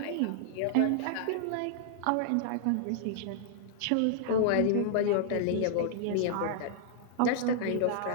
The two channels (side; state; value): both; different; correlation -0.01